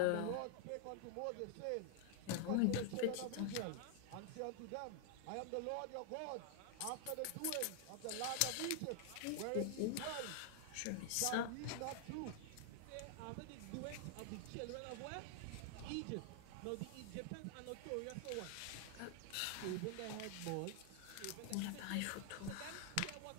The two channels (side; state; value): both; different; correlation 0.00